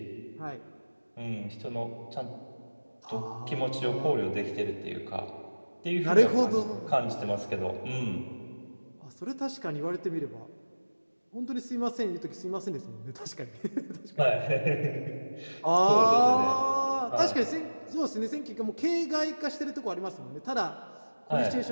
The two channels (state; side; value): inverted; both; correlation -1.00